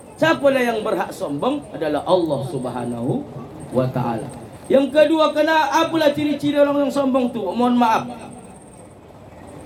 Siapalah yang berhak sombong adalah Allah Subhanahu wa taala. Yang kedua, apalah ciri-ciri orang yang sombong tu? Mohon maaf.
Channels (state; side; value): identical; both; correlation 1.00